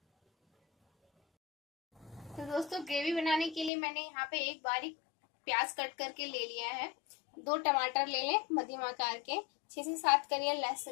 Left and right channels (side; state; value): right; drops out; at 3.7 s